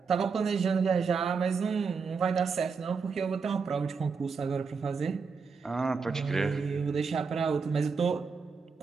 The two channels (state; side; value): quieter; left; 5.3 dB